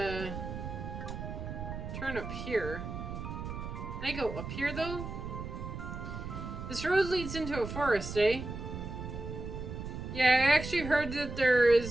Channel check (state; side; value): noise; right; rumble, 7 dB below the sound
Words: turn up here. Can I go up here though? This road leads into a forest, eh? Yeah, I actually heard that there